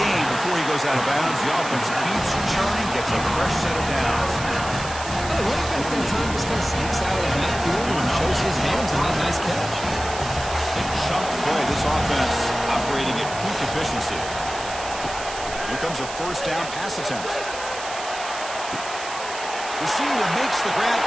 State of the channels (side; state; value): right; noise; hiss, 10 dB below the sound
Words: before he goes out of bounds. The offense keeps churning, gets a fresh set of downs. Well, the running back that time just kind of sneaks out of the backfield and shows his hands on that nice catch. Big chunk play. This offense operating at peak efficiency. Here comes a first down pass attempt. Receiver makes the grab